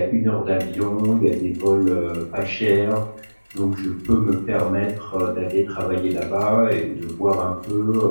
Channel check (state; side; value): inverted; both; correlation -1.00